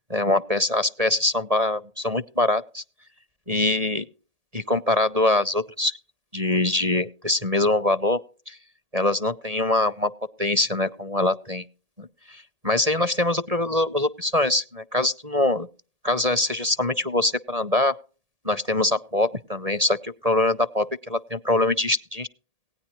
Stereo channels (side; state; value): left; late; 1.8 ms